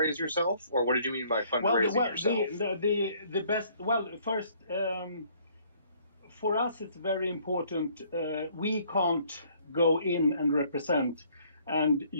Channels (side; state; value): both; inverted; correlation -0.61